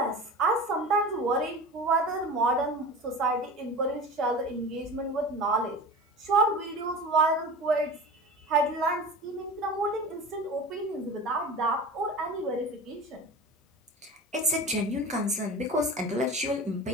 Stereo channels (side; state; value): both; normal; correlation 0.33